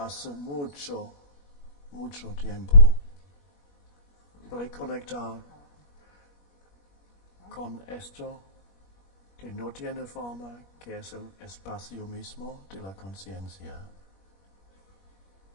hace mucho, mucho tiempo. Reconectar con esto que no tiene forma, que es el espacio mismo de la conciencia.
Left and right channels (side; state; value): right; late; 21 ms